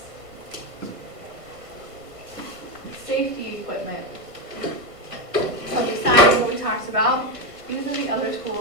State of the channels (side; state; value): left; late; 1.5 ms